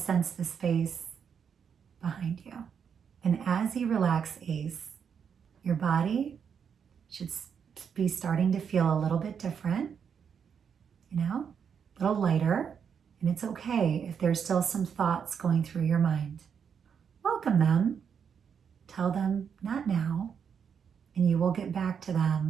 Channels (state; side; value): quieter; left; 7.2 dB